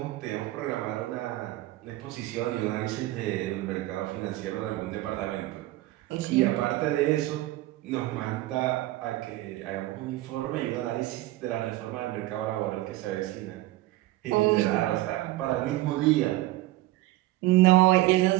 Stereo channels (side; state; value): left; quieter; 17.2 dB